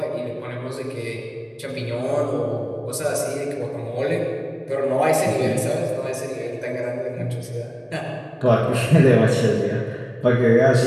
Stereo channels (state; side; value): identical; both; correlation 1.00